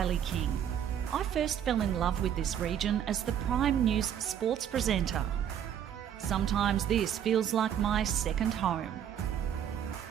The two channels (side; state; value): left; quieter; 9.4 dB